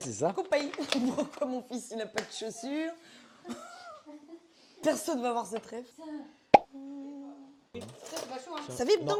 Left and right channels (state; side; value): identical; both; correlation 1.00